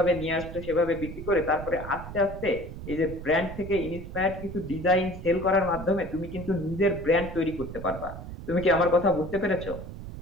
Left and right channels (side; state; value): right; noise; rumble, 10 dB below the sound